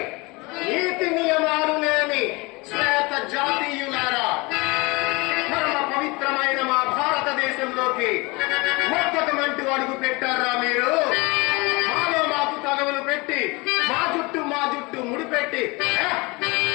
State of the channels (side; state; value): right; quieter; 25.5 dB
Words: నీతి నియమాలు లేని శ్వేత జాతీయులారా, పరమ పవిత్రమైన మా భారతదేశంలోకి మొత్తమంటూ అడుగు పెట్టారా మీరు? మాలో మాకు తగవులు పెట్టి మా జుట్టు ముడిపెట్టి